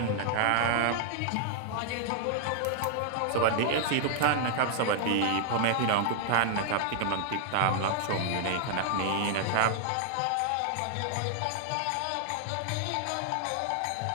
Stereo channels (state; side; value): different; both; correlation 0.00